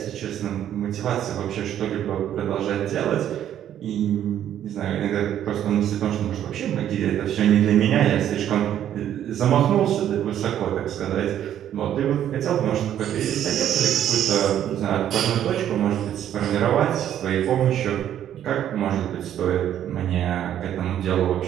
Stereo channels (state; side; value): quieter; left; 10.7 dB